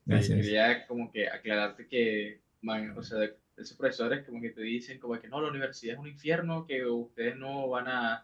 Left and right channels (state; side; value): identical; both; correlation 1.00